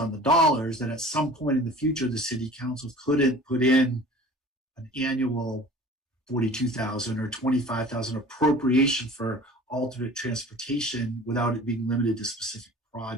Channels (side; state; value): both; normal; correlation 0.44